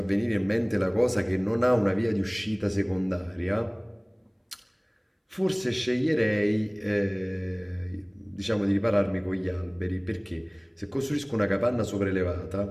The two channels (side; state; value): both; identical; correlation 1.00